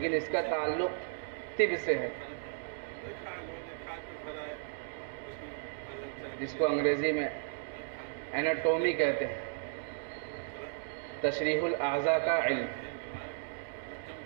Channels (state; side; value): silent; left; digital silence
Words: اس کا تعلق طب سے ہے. جس کو انگریزی میں ایناٹومی کہتے ہیں، تشریح الاعضاء کا علم،